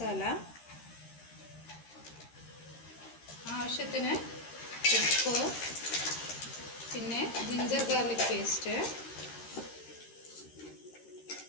ആവശ്യത്തിന് ഉപ്പ്, പിന്നെ ജിഞ്ചർ ഗാർലിക് പേസ്റ്റ്,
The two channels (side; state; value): right; late; 13 ms